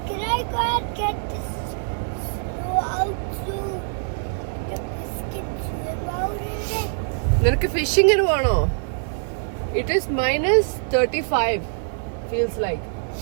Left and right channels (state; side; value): silent; left; 59 dB below the other